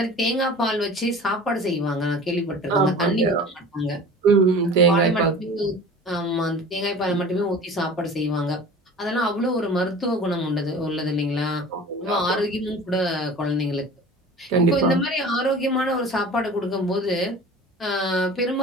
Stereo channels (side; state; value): both; normal; correlation 0.40